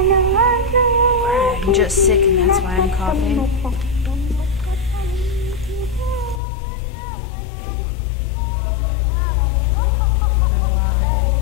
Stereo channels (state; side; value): drops out; right; at 6.4 s